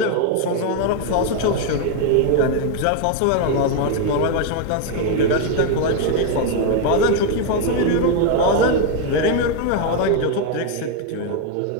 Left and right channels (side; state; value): both; different; correlation 0.01